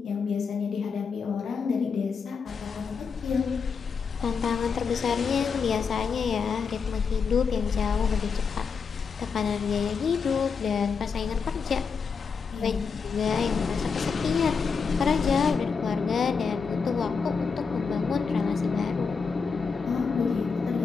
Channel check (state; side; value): quieter; right; 5.5 dB